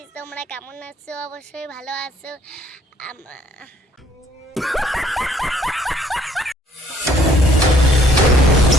তোমরা কেমন আছো? অবশ্যই ভালো আছো।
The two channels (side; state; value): both; normal; correlation 0.63